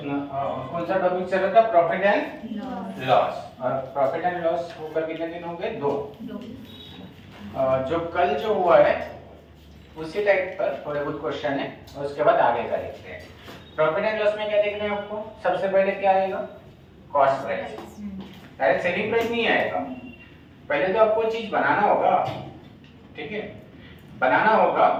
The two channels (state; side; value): identical; both; correlation 1.00